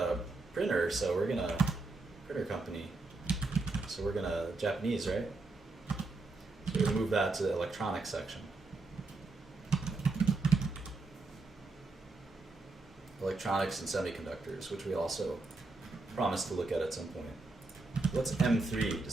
printer, so we're gonna printer company. So we're gonna Japanese, right? So we're gonna move that to the electronics section. Electronics and semiconductors, which we also promised to look at some point. What's M3?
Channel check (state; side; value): quieter; left; 3.5 dB